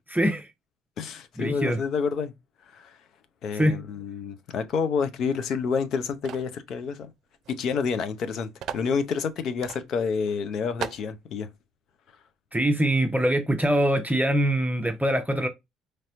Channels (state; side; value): normal; both; correlation 0.78